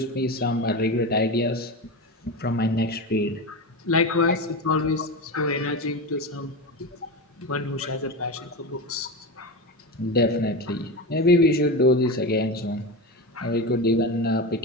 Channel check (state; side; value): normal; both; correlation 0.21